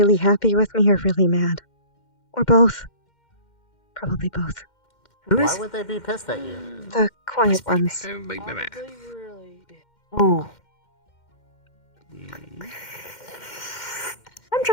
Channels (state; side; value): late; right; 2.1 ms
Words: happy with me or really mad. Or both. Probably both. Why would they be pissed at you? The quiet ones. Probably really big. Ooh. I'm